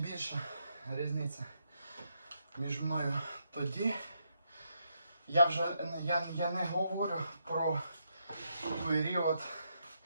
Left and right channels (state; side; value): inverted; both; correlation -0.79